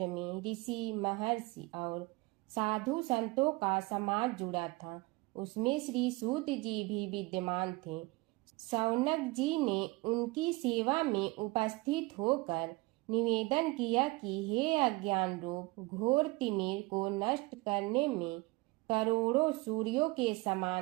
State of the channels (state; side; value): quieter; left; 23.2 dB